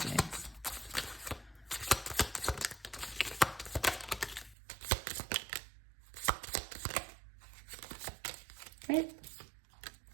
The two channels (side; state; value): left; drops out; at 4.5 s